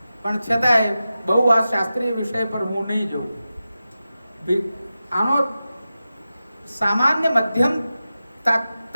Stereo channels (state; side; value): inverted; both; correlation -0.93